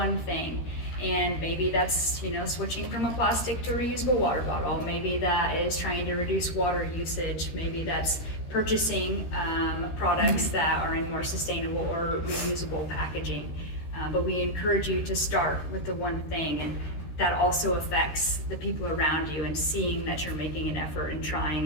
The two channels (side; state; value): right; late; 13 ms